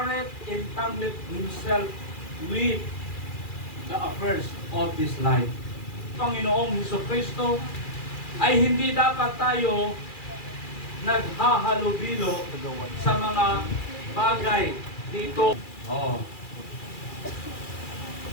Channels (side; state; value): right; late; 2.4 ms